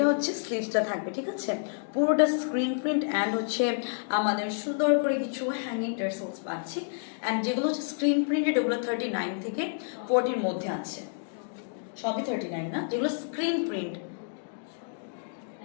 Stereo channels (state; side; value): silent; right; digital silence